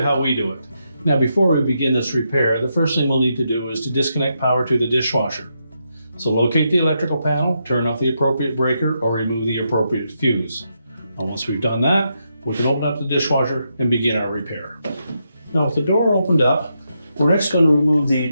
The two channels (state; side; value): inverted; both; correlation -0.82